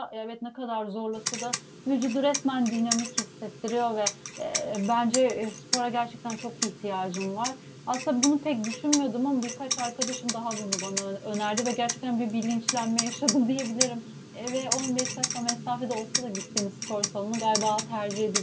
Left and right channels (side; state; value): both; identical; correlation 1.00